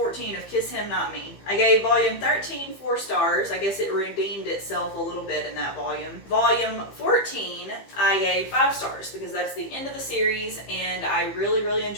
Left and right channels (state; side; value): late; right; 15 ms